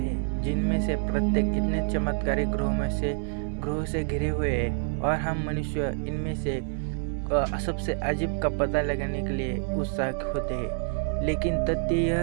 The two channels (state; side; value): silent; left; 57 dB below the other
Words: जिनमें से प्रत्येक इतने चमत्कारी ग्रहों से घिरे हुए हैं और हम मनुष्य इनमें से सबसे अजीब का पता लगाने के लिए उत्साहित होते हैं। लेकिन तथ्य यह